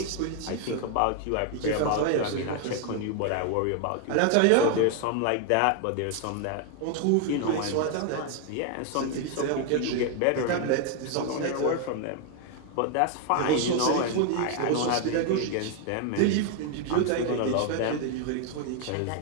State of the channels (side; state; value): both; different; correlation 0.00